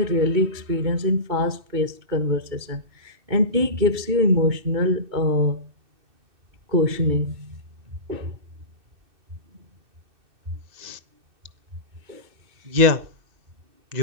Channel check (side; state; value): left; late; 2.6 ms